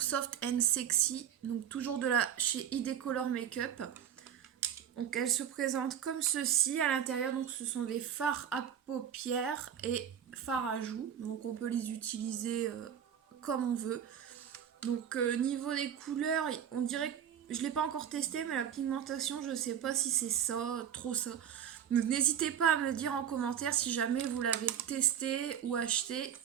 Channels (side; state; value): left; quieter; 9.0 dB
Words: and sexy, donc toujours de la chez ID Color Makeup. Donc elle se présente comme ceci à l'intérieur. Donc ce sont des fards à paupières et fards à joues. Donc on peut les utiliser comme on veut. Donc niveau des couleurs, on dirait que je l'ai pas encore testé, mais la pigmentation, je sais pas si c'est ça, trop ça. Donc n'hésitez pas à me dire en commentaire si jamais vous l'avez testé ou acheté,